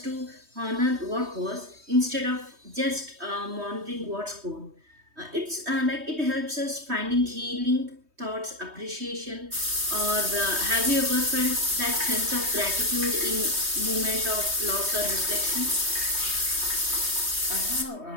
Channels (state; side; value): late; left; 3.2 ms